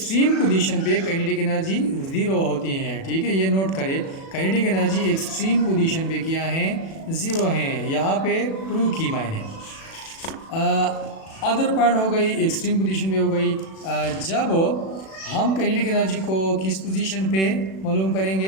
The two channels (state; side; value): late; right; 37 ms